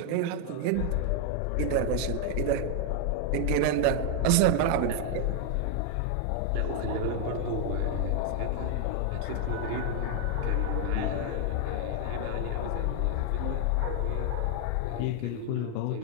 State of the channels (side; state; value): both; different; correlation 0.00